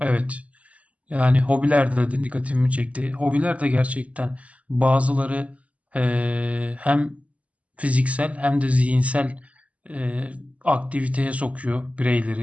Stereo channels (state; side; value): late; left; 0.068 ms